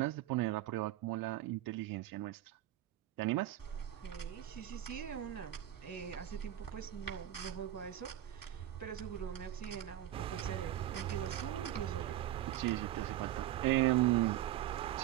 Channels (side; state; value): left; quieter; 13.0 dB